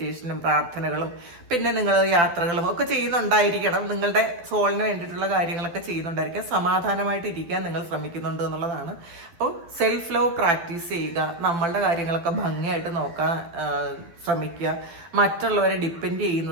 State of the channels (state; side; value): late; left; 12 ms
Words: പ്രാർത്ഥനകളും പിന്നെ നിങ്ങൾ യാത്രകളും ഒക്കെ ചെയ്യുന്നുണ്ടായിരിക്കണം. നിങ്ങളുടെ സോളിന് വേണ്ടിയിട്ടുള്ള കാര്യങ്ങളൊക്കെ ചെയ്യുന്നുണ്ടായിരിക്കാം. സമാധാനമായിട്ട് ഇരിക്കാൻ നിങ്ങൾ ശ്രമിക്കുന്നുണ്ട് എന്നുള്ളതാണ്. അപ്പോൾ സെൽഫ് ലവ് പ്രാക്ടീസ് ചെയ്യുക. നമ്മളുടെ കാര്യങ്ങളൊക്കെ ഭംഗിയായിട്ട് നോക്കാൻ ശ്രമിക്കുക. മറ്റുള്ളവരെ ഡിപ്പെൻഡ്